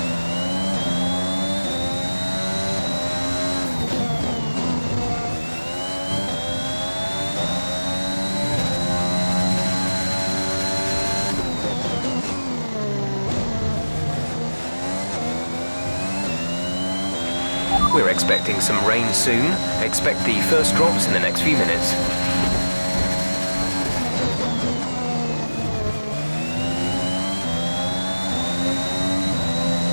We're expecting some rain soon. Expect the first drops in the next few minutes.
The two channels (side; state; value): both; inverted; correlation -1.00